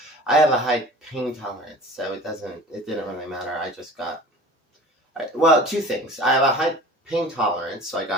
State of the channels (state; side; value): normal; both; correlation 0.41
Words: I have a high pain tolerance, so it didn't really matter. Well, two things. I have a high pain tolerance, so I